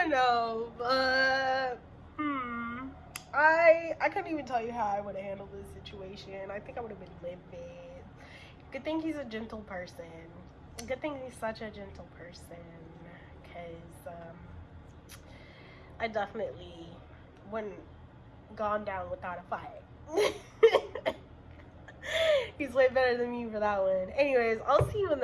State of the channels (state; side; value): identical; both; correlation 1.00